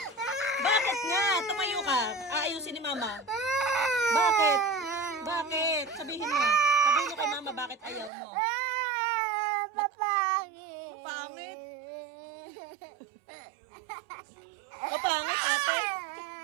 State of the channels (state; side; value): drops out; left; at 8.1 s